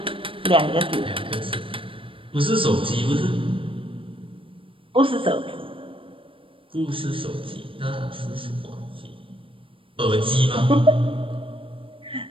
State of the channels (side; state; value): left; late; 0.25 ms